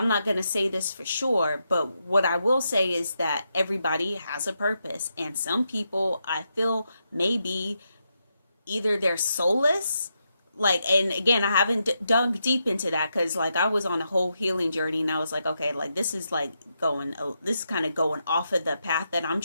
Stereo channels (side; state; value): both; inverted; correlation -0.83